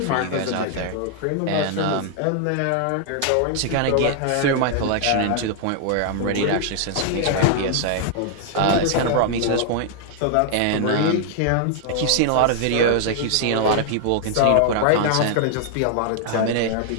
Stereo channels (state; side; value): different; both; correlation 0.00